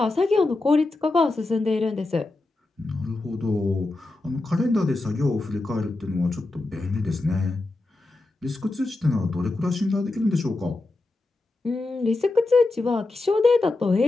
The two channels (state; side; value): quieter; right; 3.1 dB